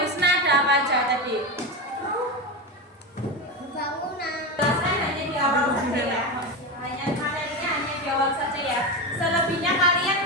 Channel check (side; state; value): both; normal; correlation 0.17